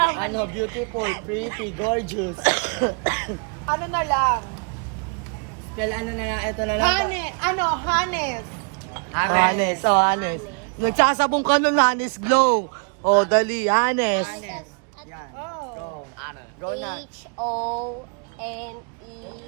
Ano, beautiful, pretty, gorgeous. Ano na lang? Spell ano na nga, ito na lang. Hanes. Hanes. Oh, Hanes. Nagsasabong ka nun, Hanes Glow. Oh, dali, Hanes. Yan. Oh. Go na.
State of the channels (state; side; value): quieter; left; 39.2 dB